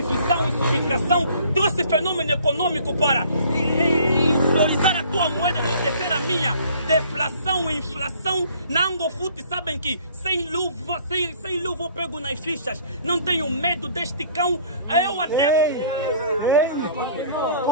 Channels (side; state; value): both; inverted; correlation -0.54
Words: e subtração. Trouxe fenômeno econômico para valorizar a tua moeda, enaltecer a minha. Deflação e inflação. Na Angofute sabem que sem luva eu pego nas fichas. Não tenho medo deste cão. Eu até...